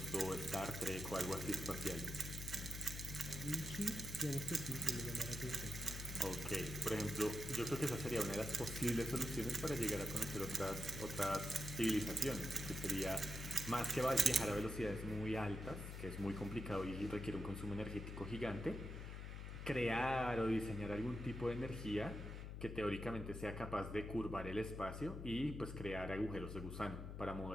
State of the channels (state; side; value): noise; left; hum, 7 dB below the sound